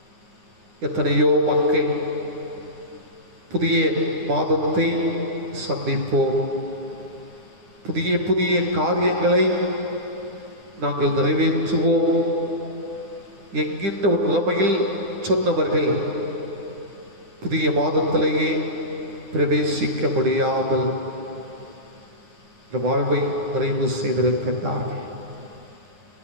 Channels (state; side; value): late; left; 9.6 ms